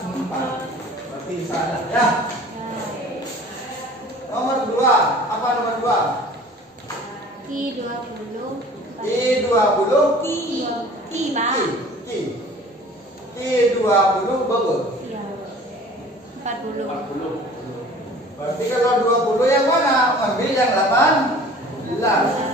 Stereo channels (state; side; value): normal; both; correlation 0.47